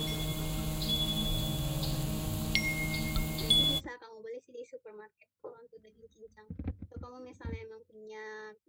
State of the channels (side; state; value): both; identical; correlation 1.00